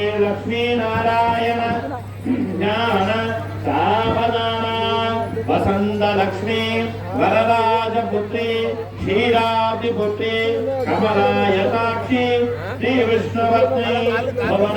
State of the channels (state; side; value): identical; both; correlation 1.00